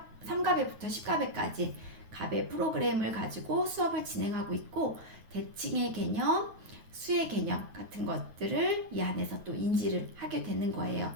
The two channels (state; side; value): late; left; 9.2 ms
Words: 10가베까지 가베 프로그램을 가지고 수업을 진행하고 있고 대칭의 개념, 수의 개념 같은 것들을 이 안에서 또 인지를 하게 되는 거예요.